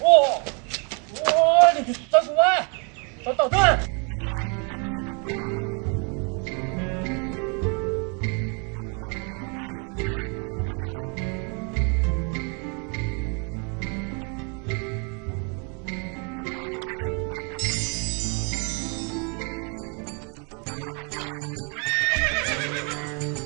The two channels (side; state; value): left; quieter; 35.8 dB